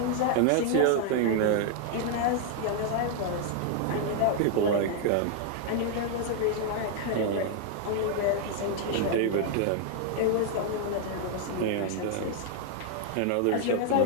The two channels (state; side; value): different; both; correlation 0.00